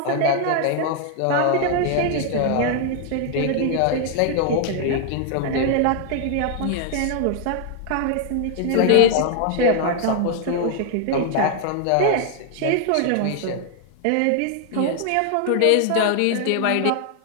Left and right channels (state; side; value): different; both; correlation 0.00